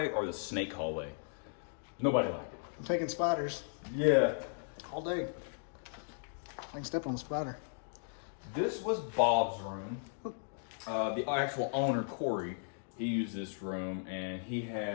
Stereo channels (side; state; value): right; silent; digital silence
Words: or the snake hallway. Nobody liked it. I'm taking spiders. Yeah. All day. I can step on a spider. This was Bob's room. The actual owner, Corey, he used this room, and he